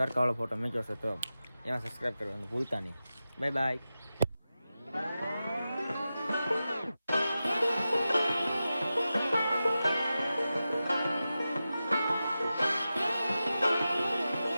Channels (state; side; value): inverted; both; correlation -0.93